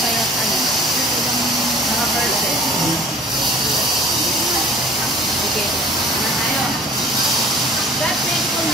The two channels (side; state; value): right; noise; hum, 28 dB below the sound